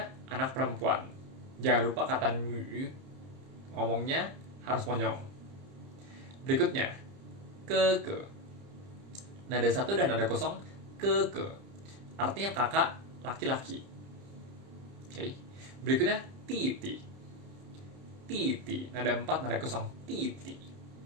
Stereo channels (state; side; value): late; left; 30 ms